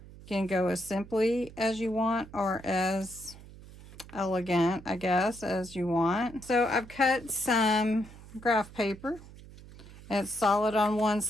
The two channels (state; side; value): noise; right; hum, 18 dB below the sound